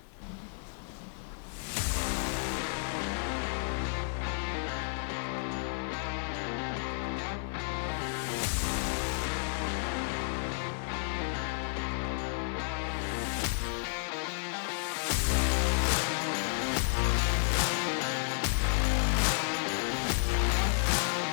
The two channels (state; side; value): silent; right; digital silence